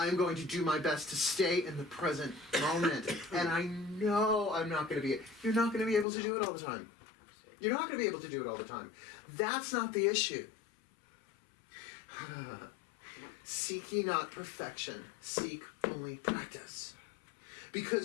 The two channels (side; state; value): right; drops out; at 6.1 s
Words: going to do my best to stay in the present moment. And I know I'm not going to be... You're not going to be able to do it all the time. You're not going to be able to do it all the time. That's not the issue. Seek ye not perfection. Seek only practice.